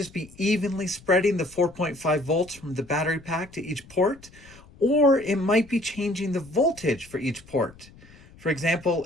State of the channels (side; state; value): left; noise; rumble, 23 dB below the sound